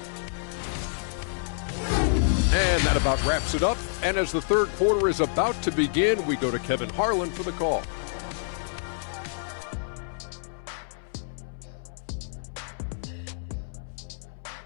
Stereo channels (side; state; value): right; silent; 60 dB below the other